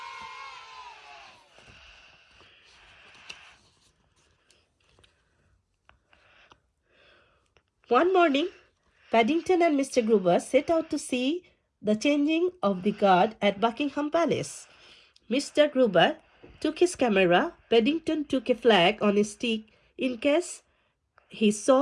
One morning, Paddington and Mr. Gruber set out to see the changing of the guard at Buckingham Palace. Mr. Gruber took his camera, Paddington took a flag on a stick in case he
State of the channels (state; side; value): identical; both; correlation 1.00